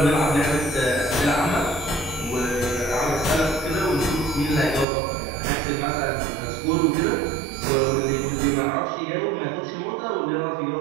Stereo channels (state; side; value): drops out; left; at 4.9 s